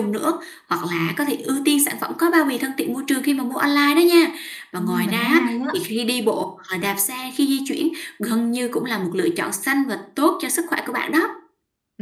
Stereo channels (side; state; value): both; identical; correlation 1.00